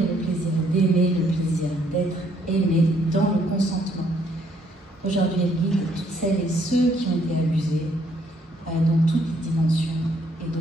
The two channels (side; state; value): both; normal; correlation 0.68